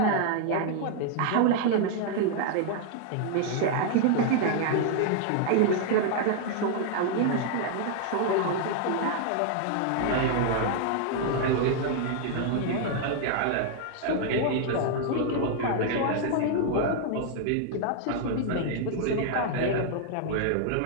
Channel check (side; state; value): both; different; correlation 0.00